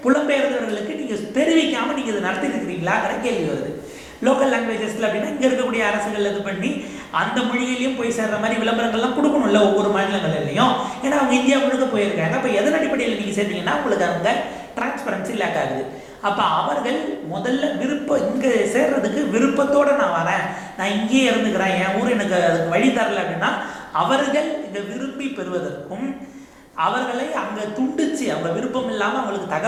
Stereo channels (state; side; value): identical; both; correlation 1.00